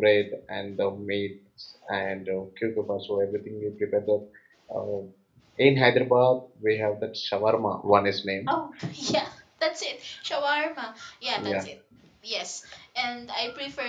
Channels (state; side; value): identical; both; correlation 1.00